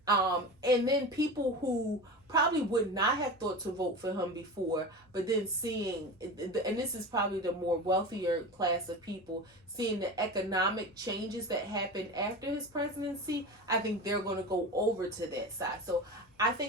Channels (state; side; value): normal; both; correlation 0.28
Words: And then people who probably would not have thought to vote for him before, but then seeing, and this is probably the more wealthier class of people, seeing the economic changes that happened after his presidency, I think they're going to go over to that side. So I